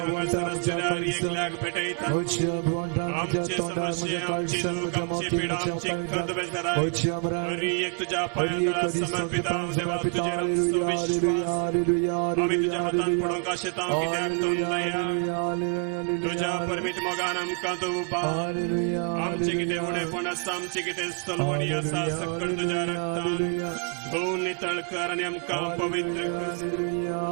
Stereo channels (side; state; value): left; quieter; 39.4 dB